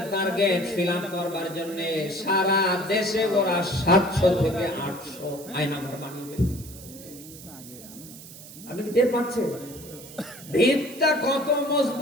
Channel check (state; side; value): noise; right; hiss, 16 dB below the sound